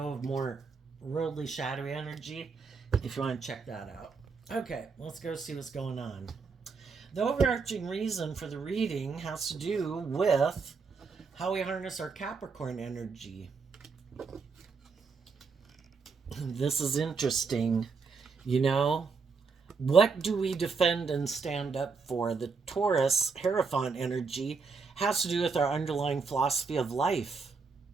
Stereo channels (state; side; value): quieter; left; 4.9 dB